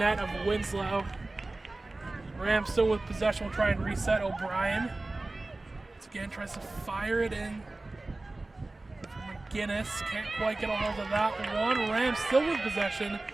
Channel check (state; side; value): quieter; left; 3.0 dB